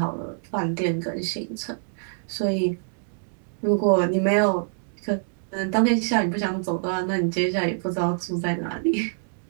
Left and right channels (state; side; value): silent; left; digital silence